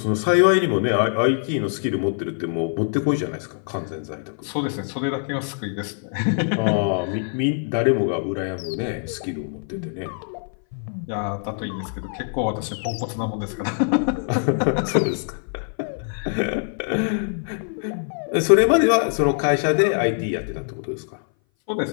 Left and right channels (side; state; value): right; silent; 59 dB below the other